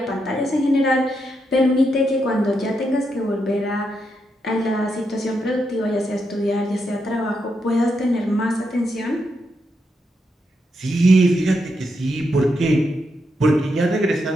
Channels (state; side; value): normal; both; correlation 0.82